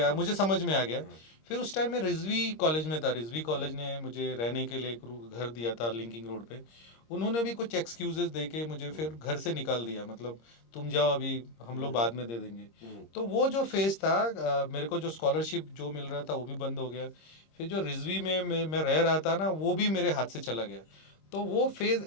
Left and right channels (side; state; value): right; late; 26 ms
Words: हाँ, मुझे समझ में आ गया। हाँ, फिर उस टाइम मैं रिजवी कॉलेज में था, रिजवी कॉलेज ने मुझे रहने के लिए एक घर दिया था लिंकिंग रोड पे। उन्होंने भी कुछ एक्सक्यूजेस दे के मुझे हम्म, फिर घर से निकाल दिया, मतलब तुम जाओ अभी, हम लोग हम्म, बाद में दे देंगे। हम्म, तो वो जो फेज़ था, मेरे को जो स्कॉलरशिप जो मिल रहा था वो भी बंद हो गया। फिर जो रिजवी में मैं रह रहा था ना, वो भी मेरे हाथ से चला गया। तो वो फेज़